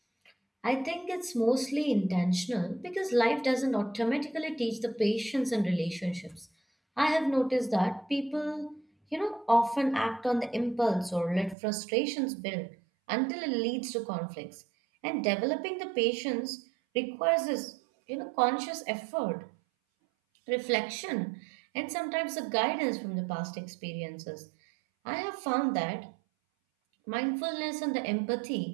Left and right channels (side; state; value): left; drops out; at 11.6 s